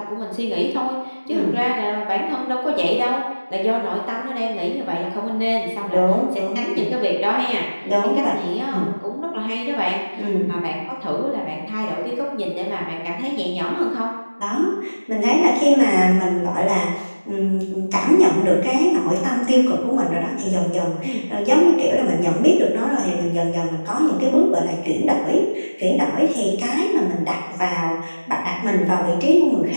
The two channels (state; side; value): inverted; both; correlation -1.00